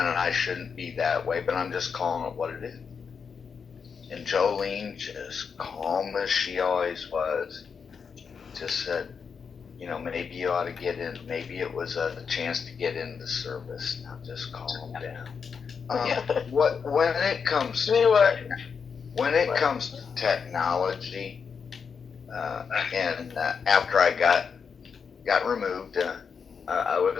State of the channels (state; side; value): quieter; right; 6.1 dB